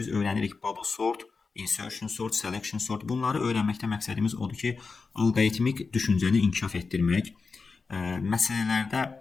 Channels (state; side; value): quieter; right; 4.6 dB